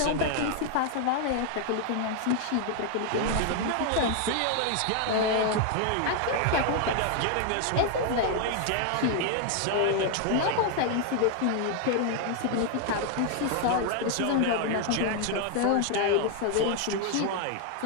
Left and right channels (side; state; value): both; different; correlation 0.00